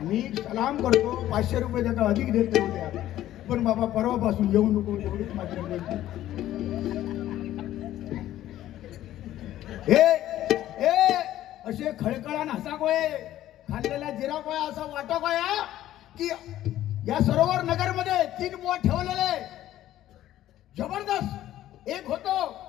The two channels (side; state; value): right; quieter; 13.4 dB